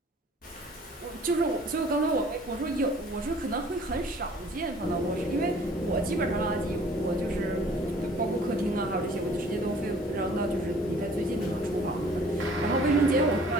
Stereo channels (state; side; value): normal; both; correlation 0.53